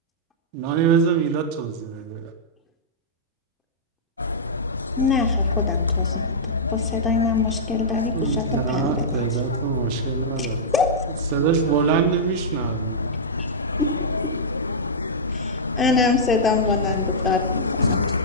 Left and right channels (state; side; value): normal; both; correlation -0.12